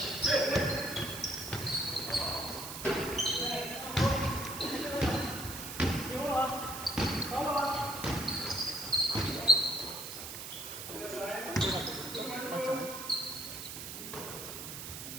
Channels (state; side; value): noise; right; hiss, 8 dB below the sound